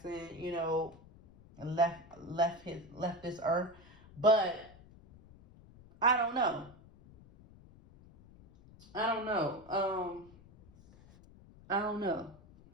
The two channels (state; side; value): noise; left; rumble, 22 dB below the sound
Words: left this earth. But I don't know. I don't know.